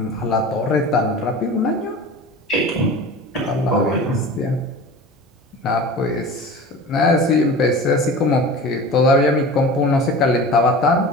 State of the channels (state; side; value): normal; both; correlation 0.36